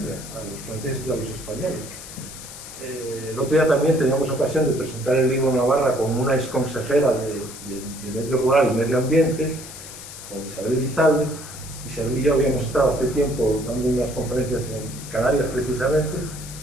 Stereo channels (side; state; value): left; noise; hiss, 13 dB below the sound